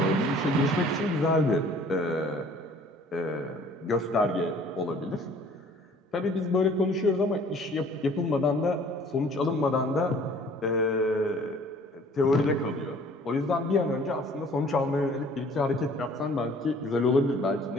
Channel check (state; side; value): normal; both; correlation 0.53